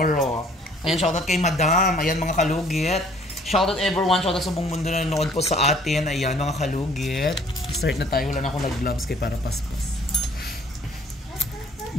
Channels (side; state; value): both; normal; correlation 0.57